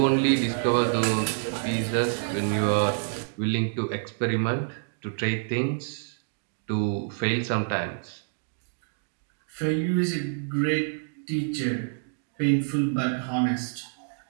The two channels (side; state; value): left; silent; digital silence